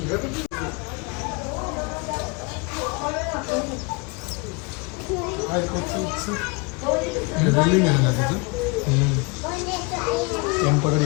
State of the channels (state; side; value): quieter; right; 29.2 dB